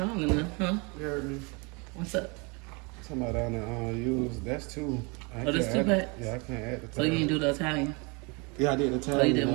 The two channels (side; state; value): left; quieter; 30.0 dB